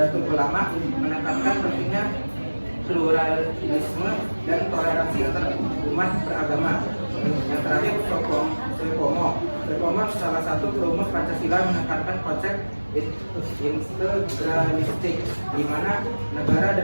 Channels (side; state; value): both; inverted; correlation -1.00